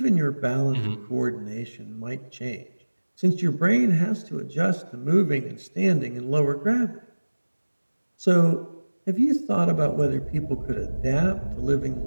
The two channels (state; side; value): inverted; both; correlation -1.00